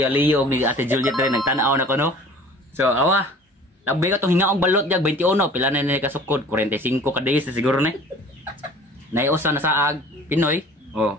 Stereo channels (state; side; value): normal; both; correlation 0.46